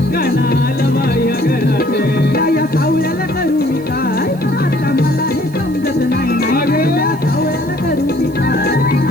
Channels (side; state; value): right; noise; hiss, 24 dB below the sound